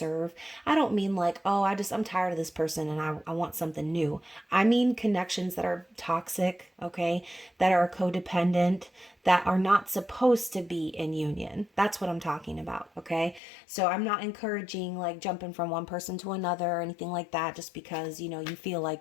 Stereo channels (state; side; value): drops out; right; at 13.4 s